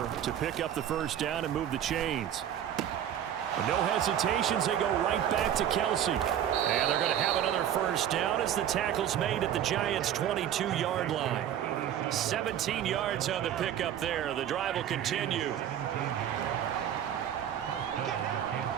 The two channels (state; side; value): quieter; left; 10.2 dB